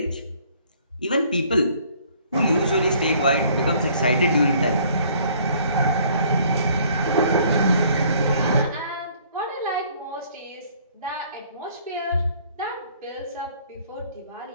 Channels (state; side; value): inverted; both; correlation -0.59